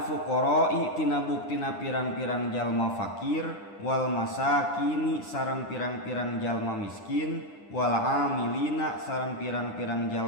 fuqara'i tina buktina pirang-pirang jalma fakir wal masakini sareng pirang-pirang jalma miskin wal amilina sareng pirang-pirang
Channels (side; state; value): right; late; 9.9 ms